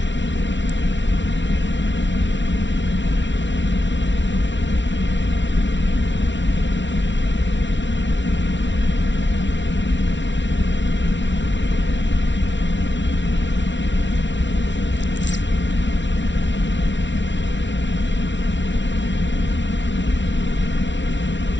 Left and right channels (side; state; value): right; late; 0.54 ms